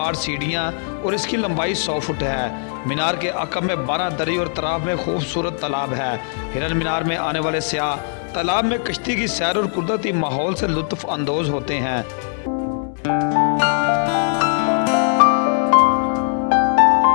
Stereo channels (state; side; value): silent; right; 62 dB below the other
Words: सीढ़ियाँ और इसकी लंबाई 100 फुट है। मीनार के अकब में 12 दरी और तराफ में खूबसूरत तालाब है। हिरन मीनार में आने वाले सयाह तालाब में कश्ती की सैर और कुदरती माहौल से लुत्फ़ अंदोज होते हैं।